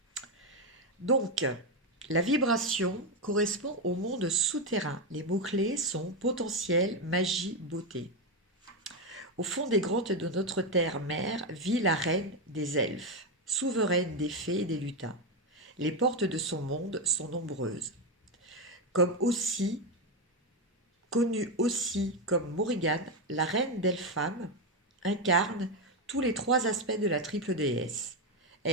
Donc, la vibration correspond au monde souterrain. Les mots-clés sont potentiel, magie, beauté. Au fond des grottes de notre terre-mère vit la reine des elfes, souveraine des fées et des lutins. Les portes de son monde sont nombreuses. Connue aussi comme Morrigan, la reine d'Elpham incarne tous les trois aspects de la triple déesse.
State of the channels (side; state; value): both; normal; correlation 0.08